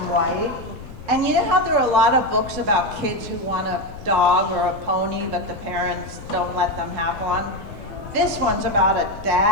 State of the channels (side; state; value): left; noise; rumble, 15 dB below the sound